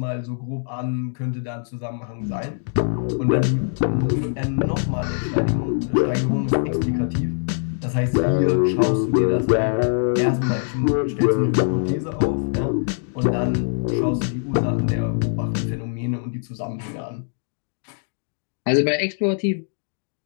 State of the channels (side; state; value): right; silent; digital silence